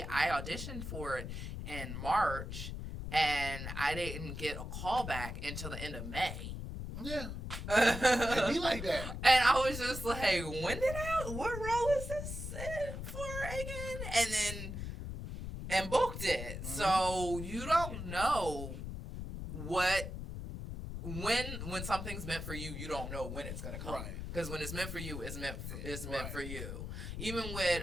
I auditioned for it in March, and I didn't get a call back until the end of May. Yeah. It'd be like that. And I was just like, what role is this for again? and booked it. So you don't know when something's meant for you, you don't know when it's gonna come. Because when it's meant for you, it's meant for you. Even with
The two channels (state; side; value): noise; left; rumble, 6 dB below the sound